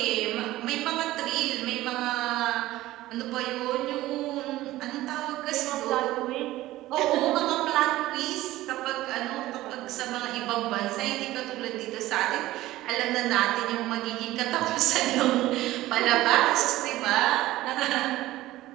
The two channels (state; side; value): quieter; left; 16.4 dB